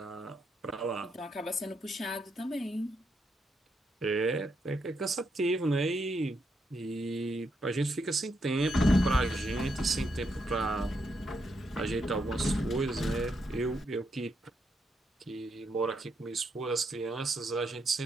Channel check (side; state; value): both; normal; correlation 0.80